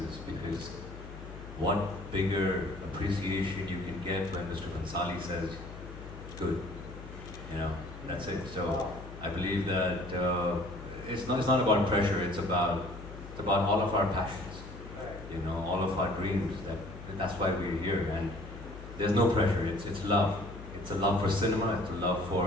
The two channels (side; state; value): left; noise; hum, 13 dB below the sound